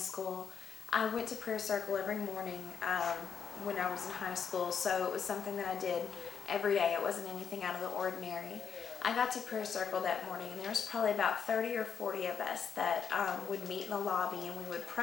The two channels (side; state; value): right; quieter; 6.8 dB